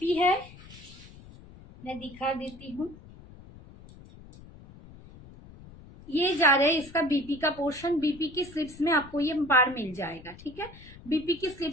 है मैं दिखा देती हूँ। ये जा रहा है इसका बीपी का पोर्शन। बीपी की स्लिप्स में आपको ये पार मिल जाएगा, ठीक है? बीपी की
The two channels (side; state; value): left; noise; rumble, 19 dB below the sound